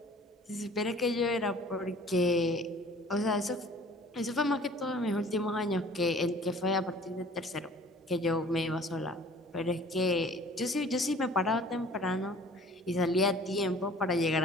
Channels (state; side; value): normal; both; correlation 0.50